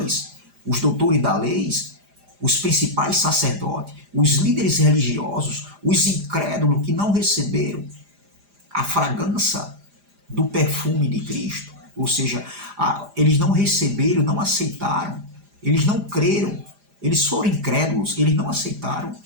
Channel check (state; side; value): late; left; 4.9 ms